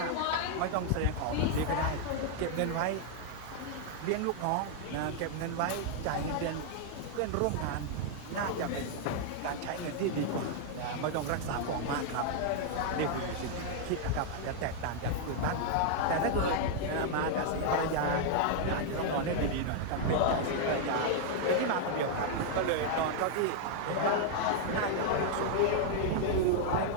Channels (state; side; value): different; both; correlation -0.01